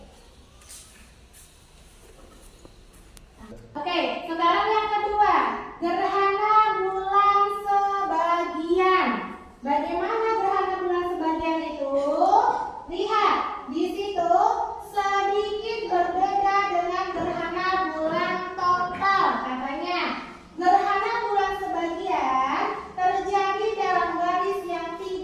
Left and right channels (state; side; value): identical; both; correlation 1.00